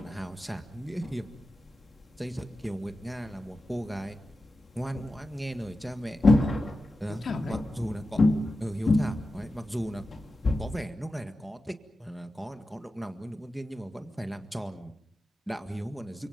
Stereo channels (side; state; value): both; normal; correlation 0.92